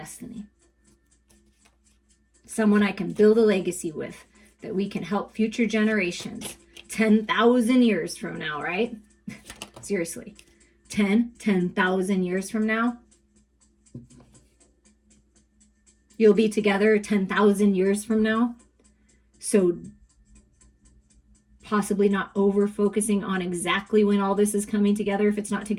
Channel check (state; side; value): identical; both; correlation 1.00